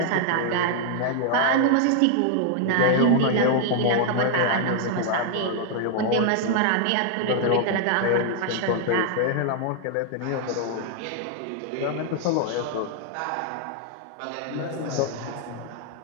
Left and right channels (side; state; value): both; different; correlation 0.00